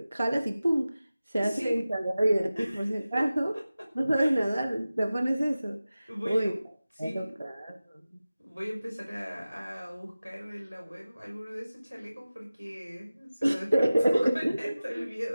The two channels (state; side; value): inverted; both; correlation -0.96